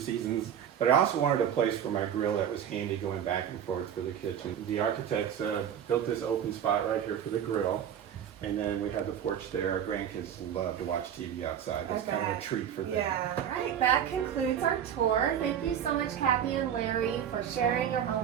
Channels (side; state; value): left; quieter; 9.2 dB